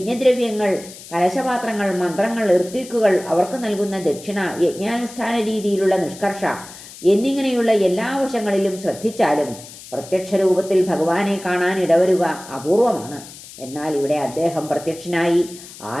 കലശപാത്രങ്ങൾ, മന്ത്രങ്ങൾ, ഋത്വിക്കുകൾ, അവർക്ക് നൽകുന്ന ദക്ഷിണ, യജ്ഞാനുഷ്ഠാന രീതിയിലുള്ള നിഷ്കർഷ എന്നിങ്ങനെയുള്ള എല്ലാ വശങ്ങളിലും ശ്രദ്ധിച്ചാലും പ്രത്യക്ഷ രൂപത്തിൽ ഭഗവാനെ കാണാൻ ഇടവരുക അപൂർവമാണ്. എന്നാൽ ഇവിടെ അദ്ദേഹം പ്രത്യക്ഷനായി.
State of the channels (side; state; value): left; noise; hiss, 17 dB below the sound